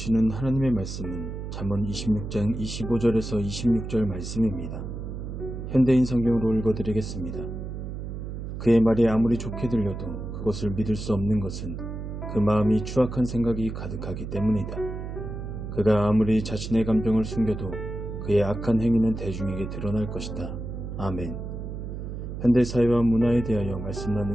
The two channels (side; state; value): right; noise; hum, 7 dB below the sound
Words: 하나님의 말씀은 잠언 26장 25절에서 26절 말씀입니다. 현대인 성경으로 읽어드리겠습니다. 그의 말이 아무리 좋게 들려도 그것을 믿을 수 없는 것은 그 마음이 추악한 생각이 가득하기 때문이다. 그가 아무리 자신의 감정을 숨겨도 그의 악한 행위는 대중에게 드러날 것이다. 아멘. 현대사회와 문화에 대하여 말씀